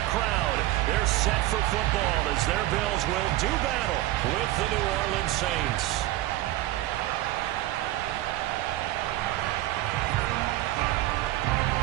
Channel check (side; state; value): left; quieter; 16.1 dB